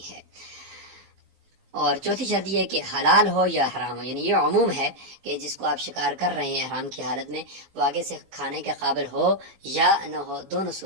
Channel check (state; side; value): late; left; 16 ms